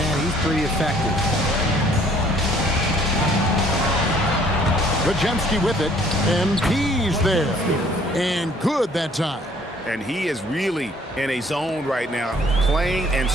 he's pretty effective. Podziemski with it, and he's there. And good that time. And he is really in a zone right now, playing and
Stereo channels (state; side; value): normal; both; correlation 0.59